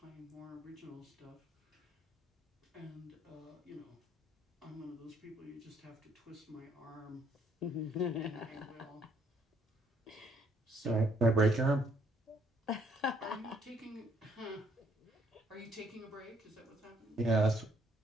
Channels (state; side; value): normal; both; correlation 0.67